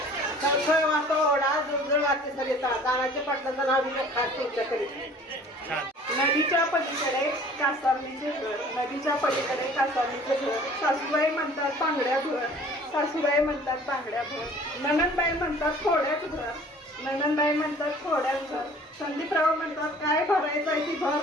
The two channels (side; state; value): both; normal; correlation 0.49